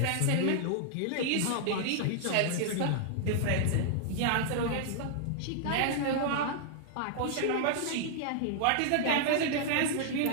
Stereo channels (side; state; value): both; different; correlation -0.01